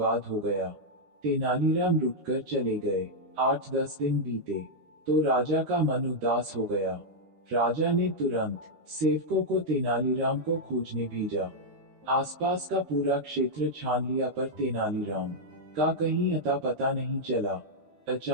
हो गया। तेनालीराम रुककर चले गए। 8-10 दिन बीते तो राजा का मन उदास हो गया। राजा ने तुरंत सेवकों को तेनालीराम को खोजने भेजा। आसपास का पूरा क्षेत्र छान लिया पर तेनालीराम का कहीं अता पता नहीं चला।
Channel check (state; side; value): late; left; 13 ms